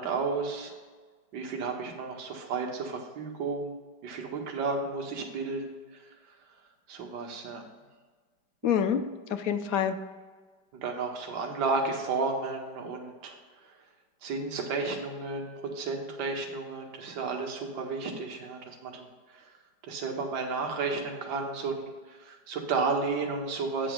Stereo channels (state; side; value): late; left; 5.0 ms